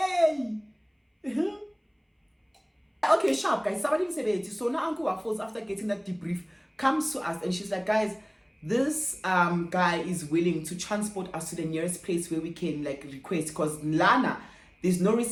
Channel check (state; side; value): identical; both; correlation 1.00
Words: Okay, sharp, guys. Somebody said it. So now Uncle Waffles, after getting that debrief, comes to us and she's like, guys, this guy is willing to transport us to the nearest place where we can like request because Lana, there's no